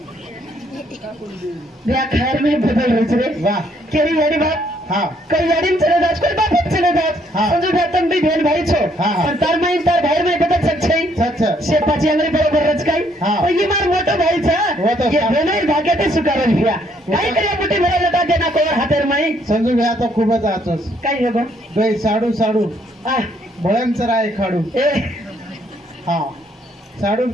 બે खैर में बदल रही છે वाह केरी यारी बात हा कई यारी में चले जात कोई बाप चले जात हाँ. समझो भैया तुम भी बहन भाई छो हाँ, हाँ. पर तार माई तार भाई में बदल सकछे सच शेपाची अंगरी बरोबर रचकाई हाँ. तो ये मार मोटो भाई वो तो छा ये सा- बहनोई भाग्याते सुकारल भैया काय करे मोठी भरा लटा देना नाही संजू भैया तो खूपच आचोस काय हे बा गई साडू साडू आ, भयंकर आहे खाडू ए हा साडू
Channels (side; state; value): both; normal; correlation 0.69